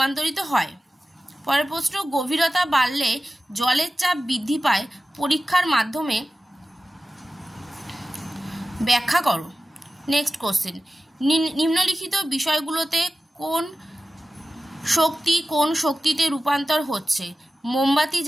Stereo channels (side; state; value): both; normal; correlation 0.95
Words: হয়? পরের প্রশ্ন গভীরতা বাড়লে জলের চাপ বৃদ্ধি পায়, পরীক্ষার মাধ্যমে ব্যাখ্যা করো। নেক্সট কোশ্চেন নিম্নলিখিত বিষয়গুলোতে কোন শক্তিতে রূপান্তর হচ্ছে? মোমবাতি